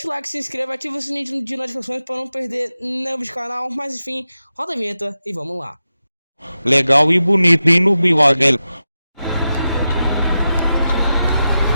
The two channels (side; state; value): both; inverted; correlation -0.91